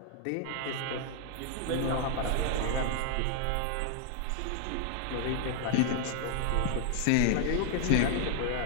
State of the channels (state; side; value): different; both; correlation 0.00